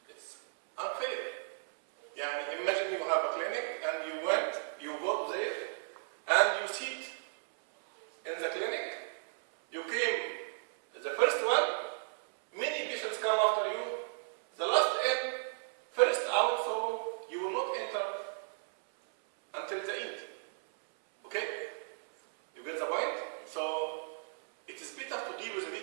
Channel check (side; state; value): left; silent; 55 dB below the other